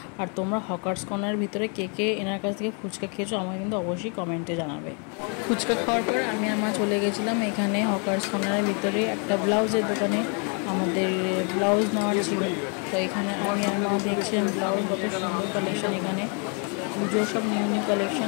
আর তোমরা হকার্স কর্নারের ভিতরে কে কে এনার কাছ থেকে ফুচকা খেয়েছো আমাকে কিন্তু অবশ্যই কমেন্টে জানাবে। ফুচকা খাওয়ার পর আমি আর মা চলে গেছিলাম এখানে হকার্স কর্নারের ভিতরে একটা ব্লাউজের দোকানে। আমাদের ব্লাউজ নেওয়ার ছিল, তো এখানে আমি আর মা দেখছিলাম ব্লাউজ, কত সুন্দর কালেকশন এখানে, পুজোর সব নিউ নিউ কালেকশন।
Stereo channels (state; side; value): quieter; right; 37.5 dB